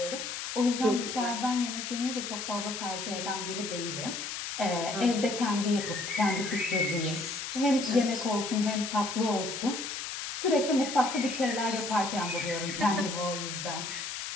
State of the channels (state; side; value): noise; left; hiss, 5 dB below the sound